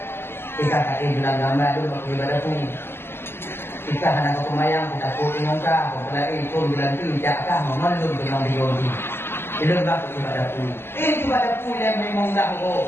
Ika kaki bilang gambar dulu waktu ibadah pun. Ika hana kumayang kita puting ka, pelai pun bilang tu jakah memelum dengan diodi. Itu bak ibadah pun. Ibadah pun yang memang dah ko.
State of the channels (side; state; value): right; late; 0.11 ms